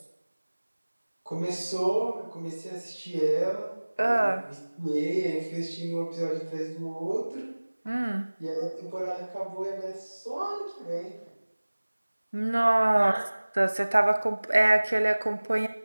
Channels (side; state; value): both; inverted; correlation -1.00